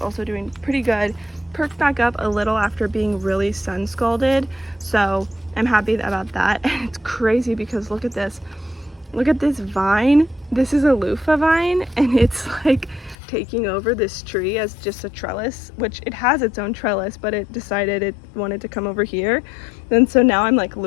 doing pretty good. Perked back up a little after being really sun scalded, so I'm happy about that. And it's crazy because look at this vine. This is a loofah vine, and it's like taking over this tree as just a trellis, which it has its own trellis, but it decided it wanted to come over here. And so now I'm like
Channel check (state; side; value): drops out; right; at 13.2 s